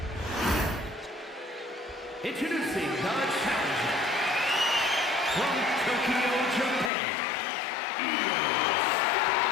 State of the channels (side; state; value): right; drops out; at 6.9 s